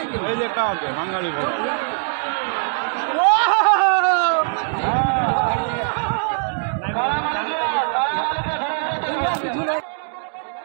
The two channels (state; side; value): silent; left; digital silence